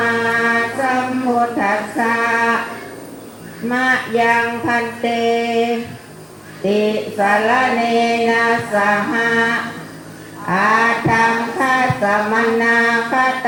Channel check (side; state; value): both; identical; correlation 1.00